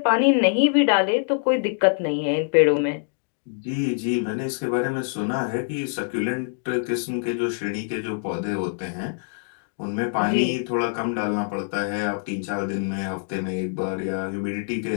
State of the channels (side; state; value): right; silent; digital silence